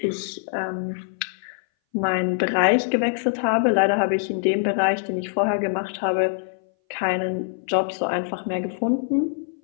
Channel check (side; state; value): right; silent; 60 dB below the other